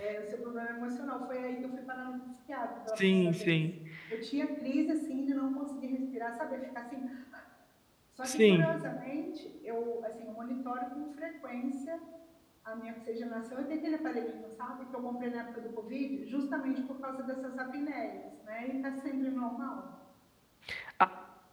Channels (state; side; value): identical; both; correlation 1.00